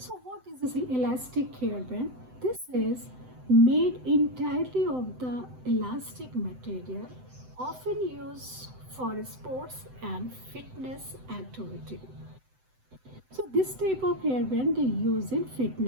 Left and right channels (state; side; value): late; left; 7.9 ms